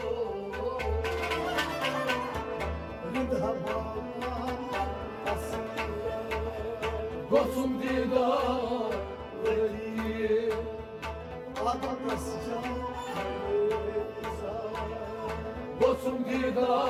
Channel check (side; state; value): both; identical; correlation 1.00